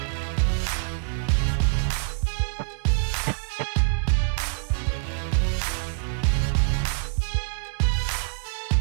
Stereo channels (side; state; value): left; silent; digital silence